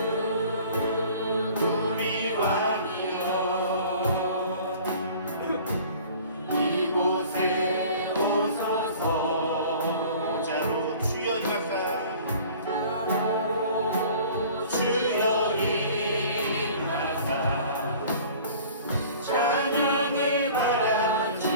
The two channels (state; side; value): inverted; both; correlation -0.47